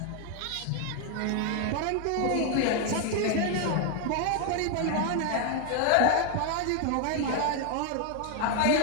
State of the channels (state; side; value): different; both; correlation 0.01